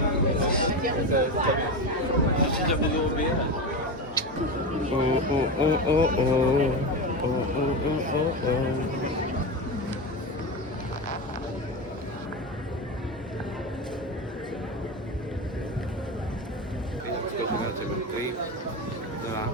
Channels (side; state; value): both; normal; correlation 0.19